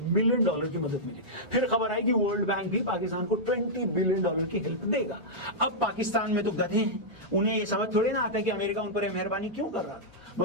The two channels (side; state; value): both; normal; correlation -0.10